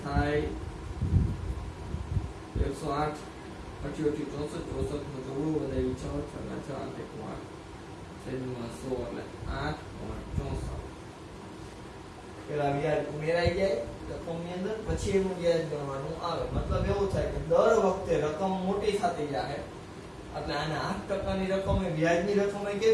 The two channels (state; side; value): identical; both; correlation 1.00